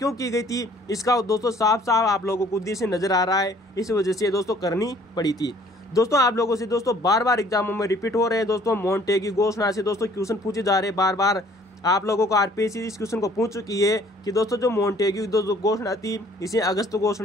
की गई थी इसका दोस्तों साफ साफ आप लोगों को उद्देश्य नजर आ रहा है, इस वजह से दोस्तों करनी पड़ी थी। दोस्तों आप लोगों से दोस्तों बार बार एग्जामों में रिपीट हो रहे हैं दोस्तों, मोंटेग्यू घोषणा से दोस्तों क्वेश्चन पूछे जा रहे हैं बार बार। आप लोगों को आरपीएससी इस क्वेश्चन को पूछ चुकी है कि दोस्तों जो मोंटेग्यू दोस्तों घोषणा थी इसे अगस्त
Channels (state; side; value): normal; both; correlation 0.57